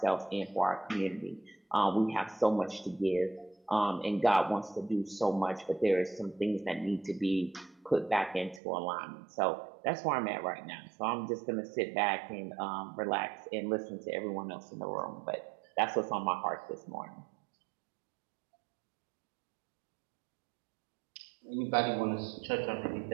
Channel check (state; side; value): drops out; left; at 8.6 s